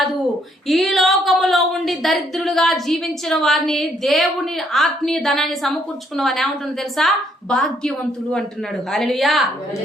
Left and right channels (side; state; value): both; normal; correlation 0.69